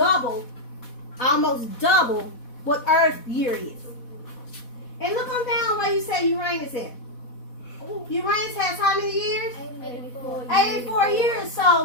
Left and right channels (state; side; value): late; right; 4.1 ms